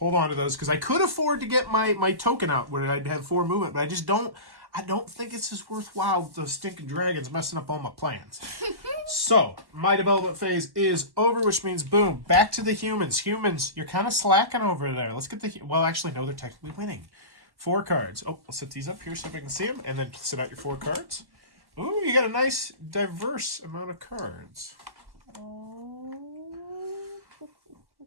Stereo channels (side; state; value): left; late; 1.1 ms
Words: on to those because I could afford to get my token out where I'd have 4 movement, but I don't think it's as worthwhile with those stinking dragons messing up all my plans. So, my development phase is over, which means, boom, back to the humans. Humans, you're kind of slacking over there. Let's get well, actually, no, they're technically winning. 4 cards. Oh, I'll set these up here so if I can see them, and then set out your 4 cards. Ooh, you got a nice, diverse amount of cards.